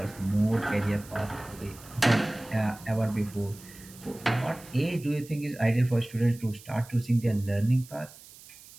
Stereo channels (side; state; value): right; noise; hiss, 20 dB below the sound